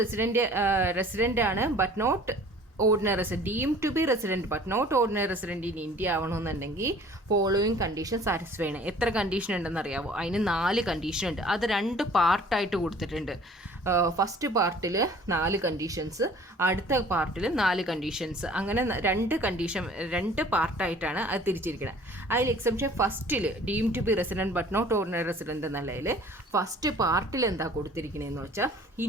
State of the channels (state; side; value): normal; both; correlation 0.50